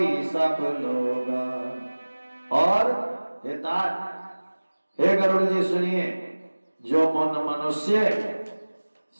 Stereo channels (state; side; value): inverted; both; correlation -1.00